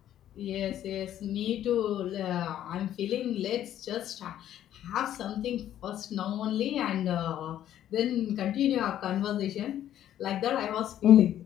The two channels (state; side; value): quieter; right; 11.5 dB